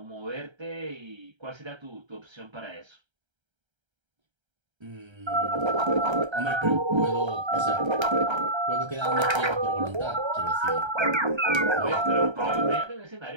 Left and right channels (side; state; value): left; late; 1.3 ms